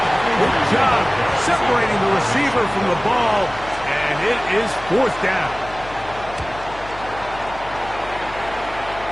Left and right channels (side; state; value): left; noise; hum, 16 dB below the sound